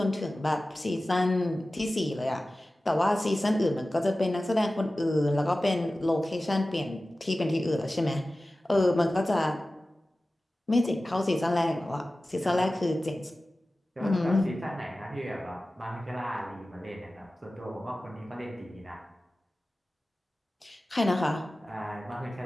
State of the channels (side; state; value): both; normal; correlation 0.96